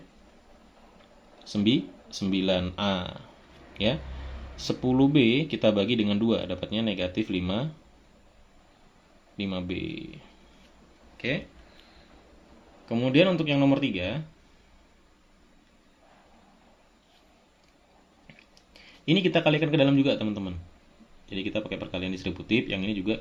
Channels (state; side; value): identical; both; correlation 1.00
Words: 9A. Ya. 10B kita bagi dengan 2, dapatnya negatif 5B. Oke. Kemudian untuk yang nomor 3, ini kita kalikan ke dalam juga teman-teman. Jadi kita pakai perkalian distributif, yang ini juga